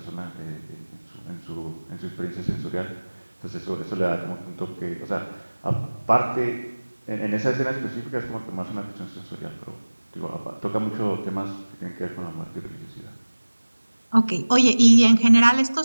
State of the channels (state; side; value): inverted; both; correlation -1.00